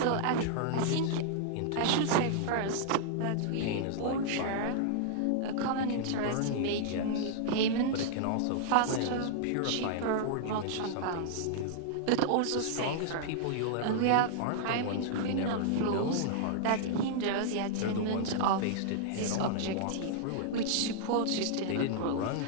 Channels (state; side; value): different; both; correlation -0.01